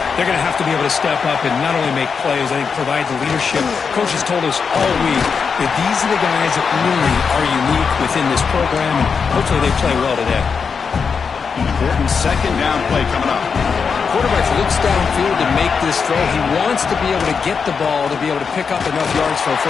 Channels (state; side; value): quieter; right; 5.8 dB